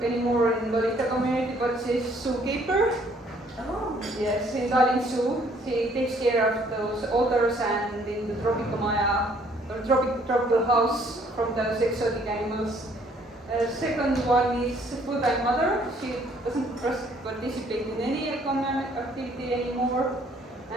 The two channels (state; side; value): normal; both; correlation 0.62